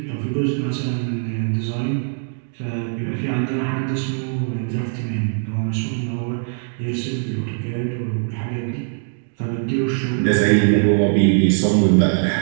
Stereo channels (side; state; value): left; silent; digital silence